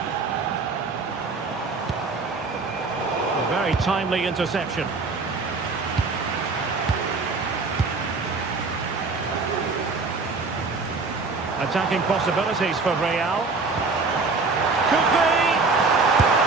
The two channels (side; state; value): left; quieter; 4.0 dB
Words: A very timely interception. Attacking possibilities for Real. Could be!